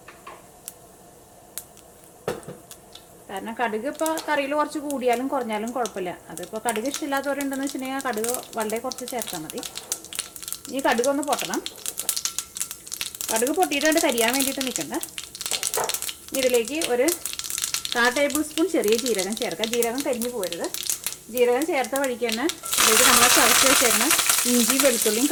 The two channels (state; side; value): identical; both; correlation 1.00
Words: കാരണം കടുക് ഇപ്പോൾ കറിയിൽ കുറച്ച് കൂടിയാലും കുറഞ്ഞാലും കുഴപ്പമില്ല. അതിപ്പോൾ കടുക് ഇഷ്ടമില്ലാത്തവരുണ്ടെന്ന് വെച്ചിട്ടുണ്ടെങ്കിൽ കടുക് വളരെ കുറച്ച് ചേർത്താൽ മതി. ഇനി കടുക് ഒന്ന് പൊട്ടണം. കടുക് പൊട്ടിയിട്ട് കരിയാൻ വേണ്ടിയിട്ട് നിൽക്കണ്ട. ഇതിലേക്ക് ഒരു 1/4 ടേബിൾ സ്പൂൺ ചെറിയ ജീരകം ചേർക്കാം. ജീരകം കരിഞ്ഞു പോരുത്. ജീരകം ചേർത്ത വഴിക്ക് തന്നെ ഇതിലേക്ക് നമ്മളെ ചതച്ച് വെച്ചേക്കുന്ന ഇഞ്ചി വെളുത്തുള്ളിയും